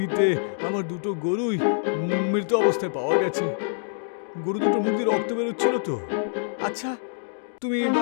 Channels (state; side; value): silent; right; digital silence